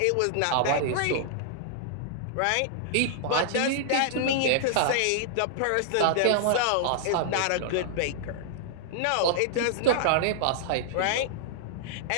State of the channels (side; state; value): both; different; correlation -0.01